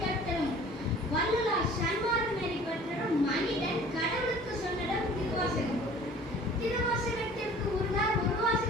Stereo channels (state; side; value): normal; both; correlation 0.48